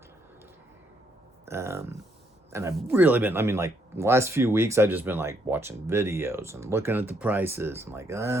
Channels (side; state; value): both; normal; correlation 0.73